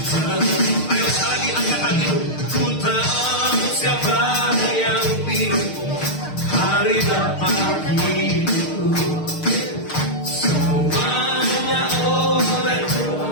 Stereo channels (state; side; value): late; right; 6.5 ms